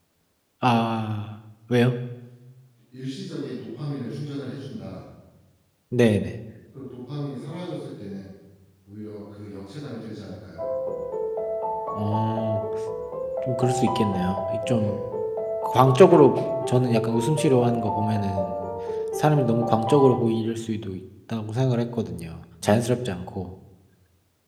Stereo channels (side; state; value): both; identical; correlation 1.00